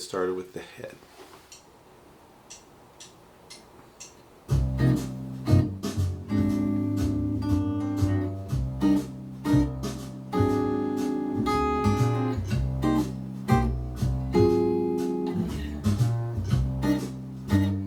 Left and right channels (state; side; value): identical; both; correlation 1.00